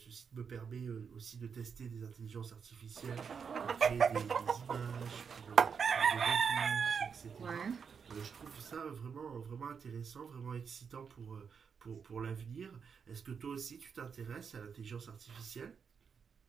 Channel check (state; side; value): quieter; left; 6.4 dB